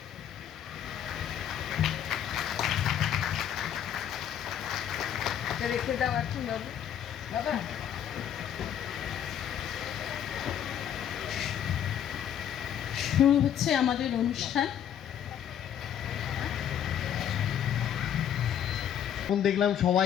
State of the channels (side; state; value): right; quieter; 9.6 dB